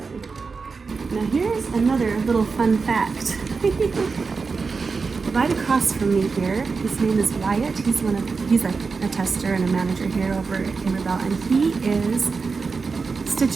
Now here's another little fun fact. Right across from me here, his name is Wyatt. He's a tester and a manager here over at Kimberbell, and he is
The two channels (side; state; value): left; quieter; 4.7 dB